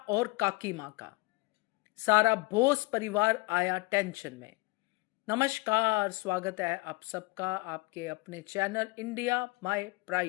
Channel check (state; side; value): quieter; right; 23.4 dB